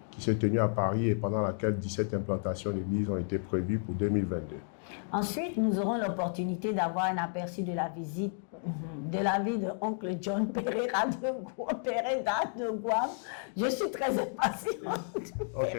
qui s'est tenu à Paris et pendant laquelle 17 implantations d'églises ont été prévues pour 2022. Ensuite, nous aurons l'opportunité d'avoir un aperçu de la visite de la vie de oncle John Pereira de Guam. Je suis très impatiente.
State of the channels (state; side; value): silent; right; 56 dB below the other